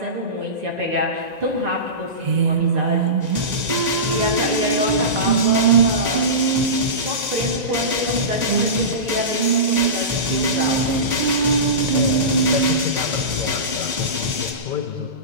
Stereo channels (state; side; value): late; left; 1.9 ms